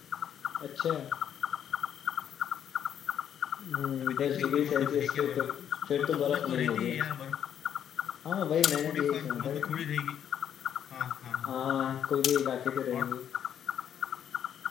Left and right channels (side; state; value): right; quieter; 9.3 dB